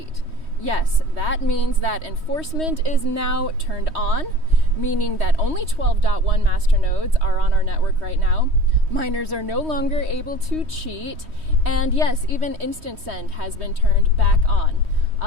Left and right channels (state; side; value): late; left; 3.2 ms